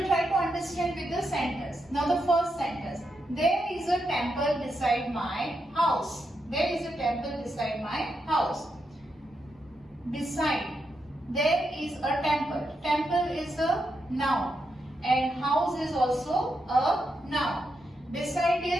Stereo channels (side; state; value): both; normal; correlation 0.84